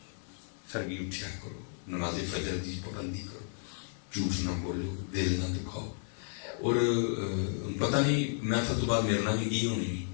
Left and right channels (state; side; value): silent; right; 56 dB below the other